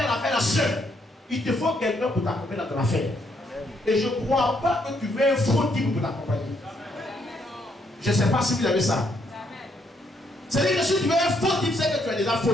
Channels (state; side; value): normal; both; correlation 0.73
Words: l'affaire seul. Il te faut quelqu'un pour t'accompagner dans ton affaire. Et je ne crois pas que tu veux un faux type pour t'accompagner. Je ne sais pas si vous avez ça. C'est-à-dire que si tu veux un faux type, c'est que tu es déjà faux